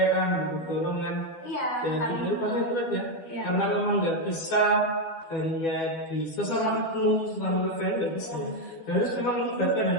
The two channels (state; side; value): late; right; 13 ms